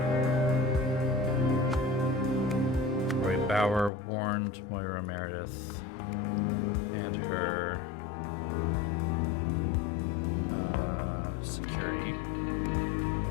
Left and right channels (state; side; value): drops out; right; at 3.9 s